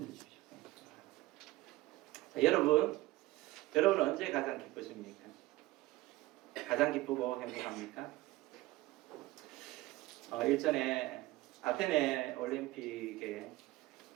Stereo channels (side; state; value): left; quieter; 18.4 dB